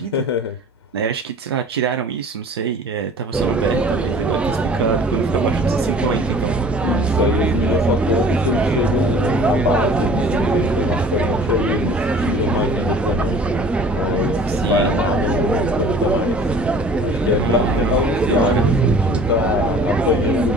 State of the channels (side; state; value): both; normal; correlation 0.48